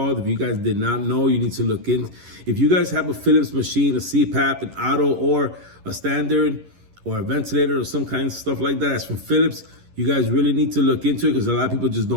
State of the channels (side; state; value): left; late; 11 ms